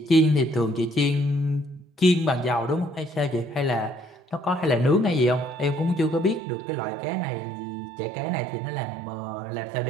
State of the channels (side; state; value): left; drops out; at 6.4 s